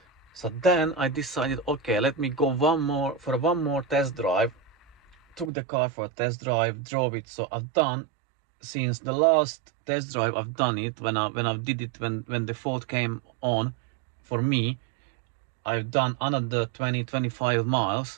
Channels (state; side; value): drops out; left; at 5.5 s